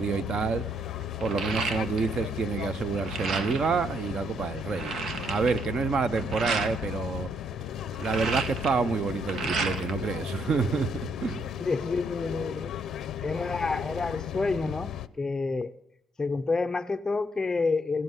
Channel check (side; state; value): both; normal; correlation 0.71